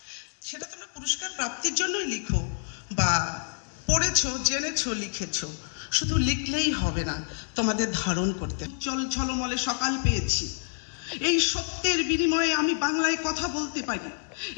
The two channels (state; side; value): silent; right; digital silence